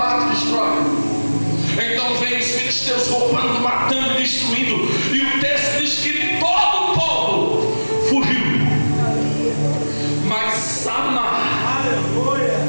e destrói. Então vem os filisteus roubando, matando e destruindo, e o texto diz que todo o povo fugiu, mas Samar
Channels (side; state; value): both; inverted; correlation -1.00